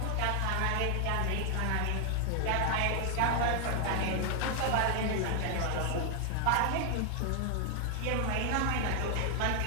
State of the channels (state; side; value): different; both; correlation 0.00